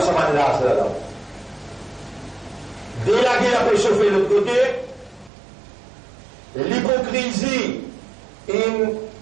ce moment là, là. Dès la guerre peut chauffer de l'autre côté, l'hypocrisie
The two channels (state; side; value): drops out; left; at 5.3 s